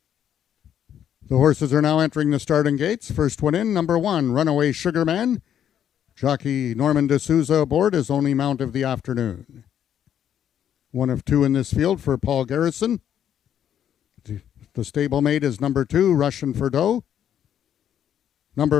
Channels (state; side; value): quieter; right; 9.7 dB